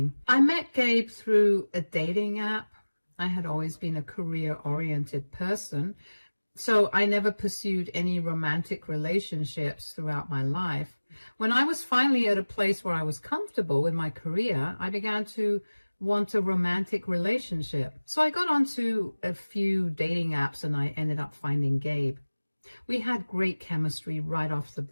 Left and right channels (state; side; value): inverted; both; correlation -1.00